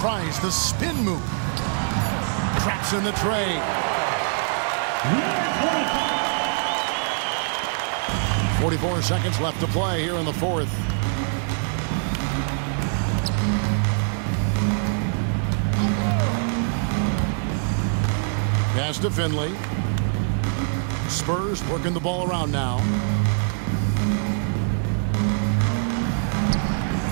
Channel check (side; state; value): left; silent; 63 dB below the other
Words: Tries the spin move. Traps in the tray. 44 seconds left to play here in the fourth. Pass to Finley. Spurs working the ball around now.